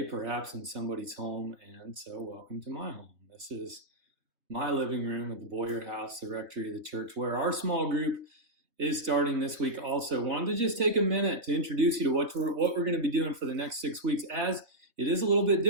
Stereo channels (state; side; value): late; left; 3.0 ms